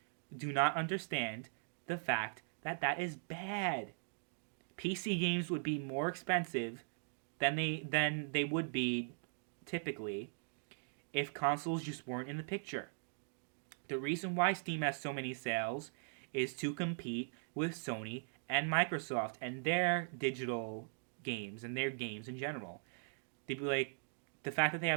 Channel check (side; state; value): left; silent; digital silence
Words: do not understand the fact that that is bad. PC games would be more expensive than they would be typically if consoles just weren't in the picture. The reason why Steam has so many sales is to compete with Sony and Microsoft and their digital games and their games in general. They'd be like, the fact that they